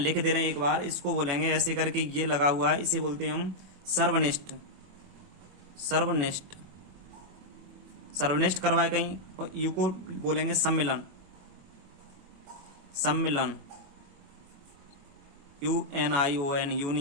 दे रहे हैं एक बार, इसको बोलेंगे ऐसे करके, ये लगा हुआ है, इसे बोलते हैं हम सर्वनिष्ठ, सर्वनिष्ठ, सर्वनिष्ठ करवाए कहीं। और यू को बोलेंगे सम्मिलन, सम्मिलन, UNION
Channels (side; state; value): left; late; 21 ms